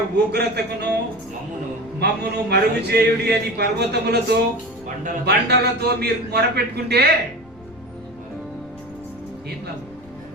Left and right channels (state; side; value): noise; left; rumble, 24 dB below the sound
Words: ఉగ్రతకును మమ్మును మరుగు చేయుడి అని పర్వతములతో బండలతో మీరు మొరపెట్టుకుంటే ఏం లాభం?